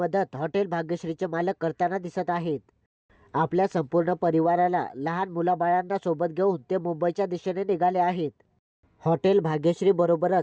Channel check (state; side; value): identical; both; correlation 1.00